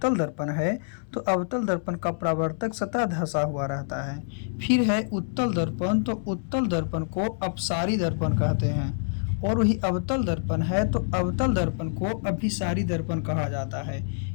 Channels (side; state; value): right; silent; 60 dB below the other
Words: दर्पण है तो अवतल दर्पण का परावर्तक सतह धंसा हुआ रहता है। फिर है उत्तल दर्पण, तो उत्तल दर्पण को अपसारी दर्पण कहते हैं, और वही अवतल दर्पण है तो अवतल दर्पण को अभिसारी दर्पण कहा जाता है।